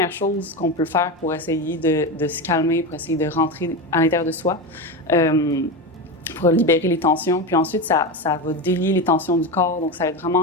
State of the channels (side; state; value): both; normal; correlation 0.19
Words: chose qu'on peut faire pour essayer de se calmer, pour essayer de rentrer à l'intérieur de soi, pour libérer les tensions. Puis ensuite, ça va délier les tensions du corps. Donc, ça va